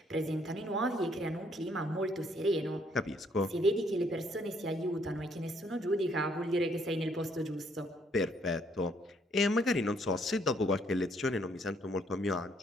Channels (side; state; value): both; normal; correlation 0.68